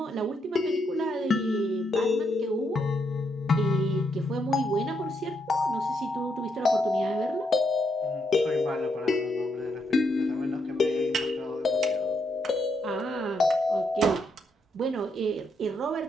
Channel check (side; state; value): both; normal; correlation 0.78